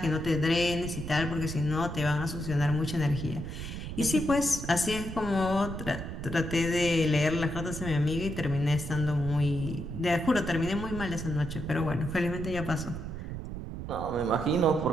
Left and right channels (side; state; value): right; noise; rumble, 7 dB below the sound